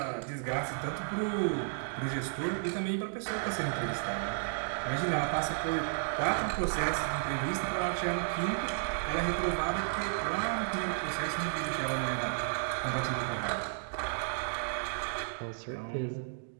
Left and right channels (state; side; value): silent; left; digital silence